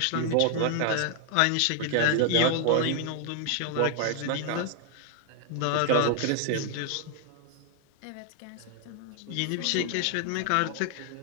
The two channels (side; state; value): both; different; correlation 0.00